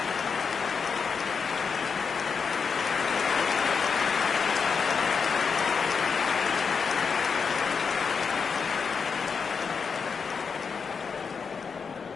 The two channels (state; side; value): quieter; right; 5.8 dB